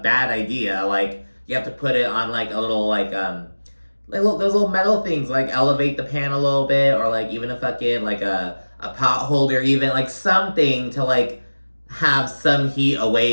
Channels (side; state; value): both; inverted; correlation -1.00